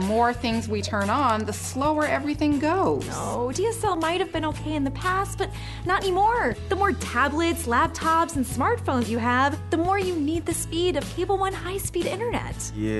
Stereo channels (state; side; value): identical; both; correlation 1.00